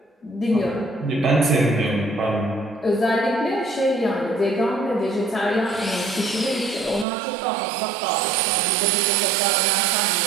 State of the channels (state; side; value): drops out; left; at 7.1 s